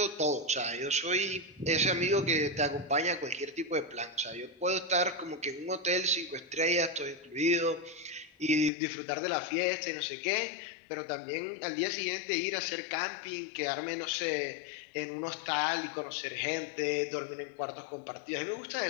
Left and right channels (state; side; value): drops out; right; at 8.7 s